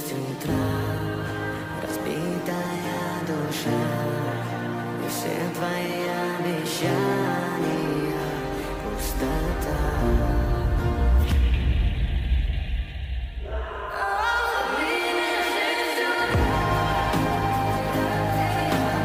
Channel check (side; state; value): both; identical; correlation 1.00